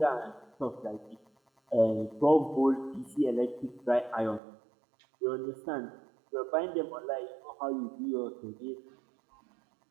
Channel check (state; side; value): drops out; left; at 4.4 s